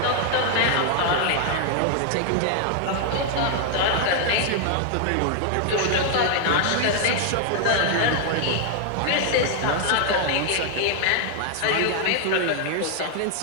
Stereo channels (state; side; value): different; both; correlation 0.00